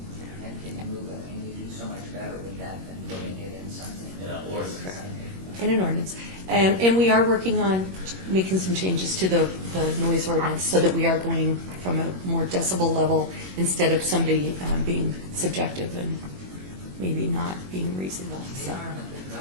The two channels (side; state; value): left; late; 21 ms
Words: And can you move it, and you do so much better with that than putting it in something. In an ordinance. in an ordinance. And we are working on making some changes to the noise ordinance so that we are going from a more decibel level instead of somebody being subjective and maybe not being reasonable. The So. environment that